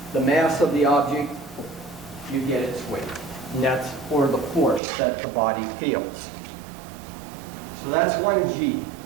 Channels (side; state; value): left; drops out; at 4.8 s